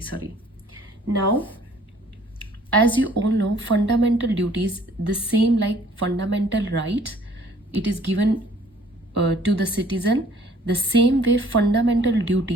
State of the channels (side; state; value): both; normal; correlation 0.57